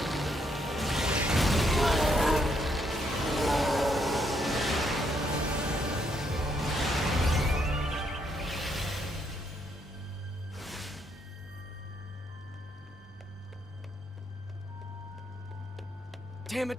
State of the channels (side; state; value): both; normal; correlation 0.74